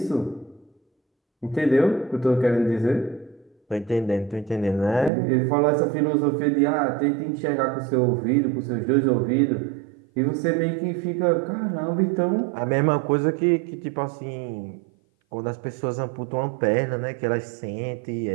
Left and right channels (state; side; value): drops out; left; at 5.1 s